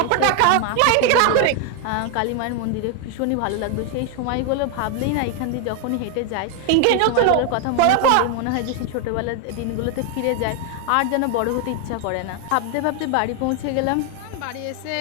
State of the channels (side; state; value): both; different; correlation 0.01